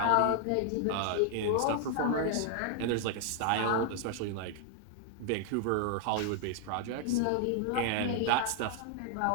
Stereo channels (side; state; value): both; different; correlation 0.00